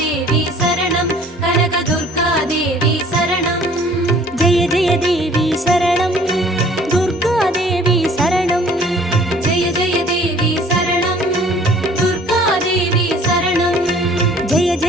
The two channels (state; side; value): normal; both; correlation 0.53